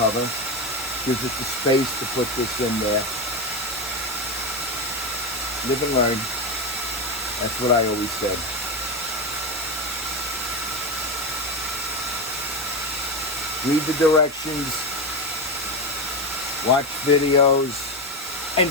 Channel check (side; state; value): both; normal; correlation 0.15